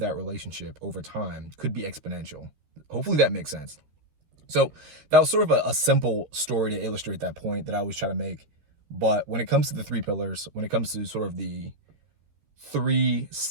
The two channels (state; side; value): late; left; 13 ms